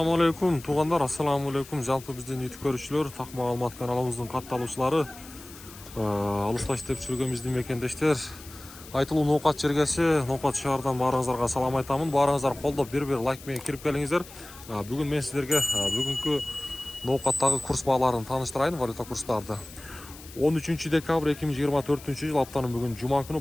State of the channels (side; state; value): left; noise; hiss, 18 dB below the sound